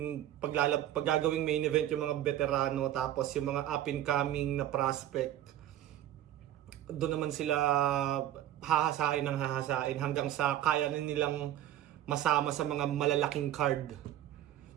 paggagawing main event yung mga veterano, tapos yung mga up and coming na prospect. Doon naman sila hahasain hanggang sa kaya na nilang masama sa mga malalaking card.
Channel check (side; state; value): left; quieter; 12.4 dB